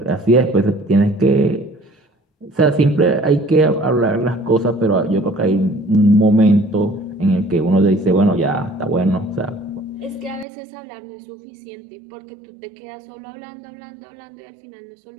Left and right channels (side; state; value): left; drops out; at 10.5 s